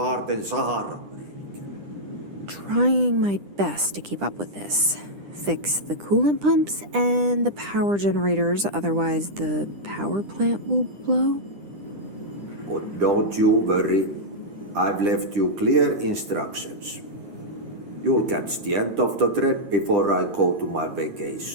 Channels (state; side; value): late; left; 10 ms